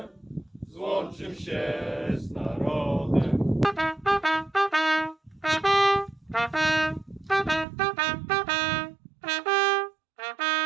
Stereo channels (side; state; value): left; drops out; at 7.7 s